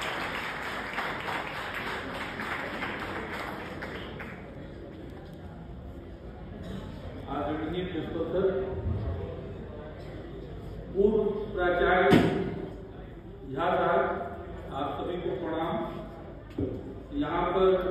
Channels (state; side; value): identical; both; correlation 1.00